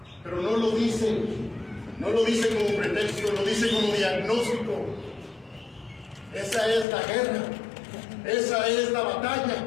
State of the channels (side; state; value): right; drops out; at 6.9 s